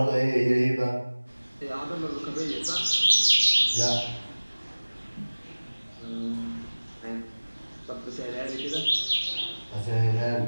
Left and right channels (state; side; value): inverted; both; correlation -1.00